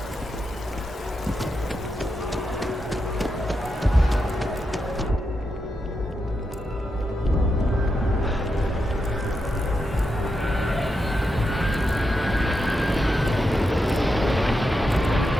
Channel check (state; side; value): normal; both; correlation 0.86